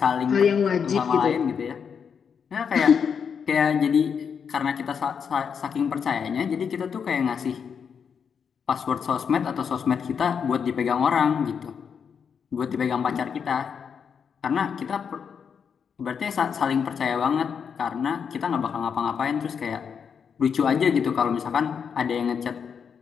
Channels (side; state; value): right; quieter; 6.8 dB